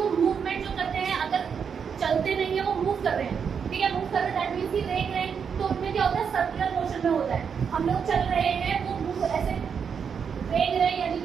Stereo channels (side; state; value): left; quieter; 6.8 dB